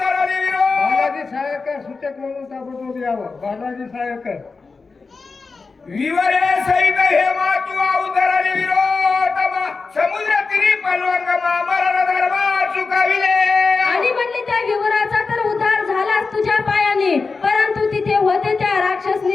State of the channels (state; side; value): quieter; right; 4.4 dB